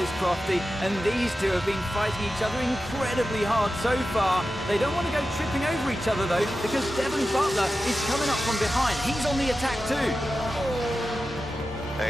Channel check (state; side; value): normal; both; correlation 0.92